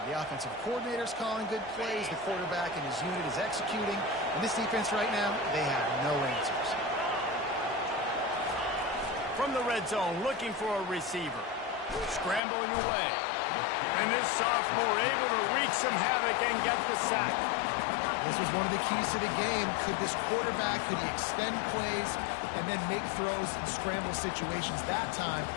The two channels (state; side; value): drops out; right; at 12.4 s